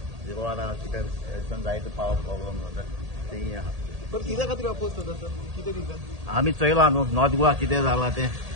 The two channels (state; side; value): late; left; 1.8 ms